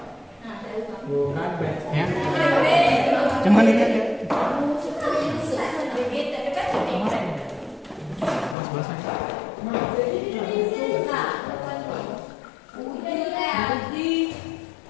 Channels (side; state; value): right; drops out; at 8.6 s